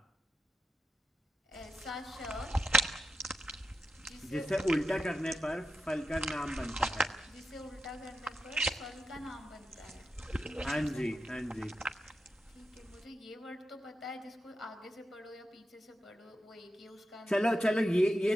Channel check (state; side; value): normal; both; correlation 0.88